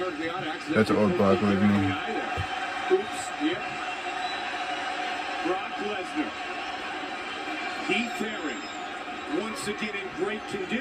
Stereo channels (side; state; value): both; identical; correlation 1.00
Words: That's old Brock Lesnar. Brock Lesnar. Heath Herring. Once again in great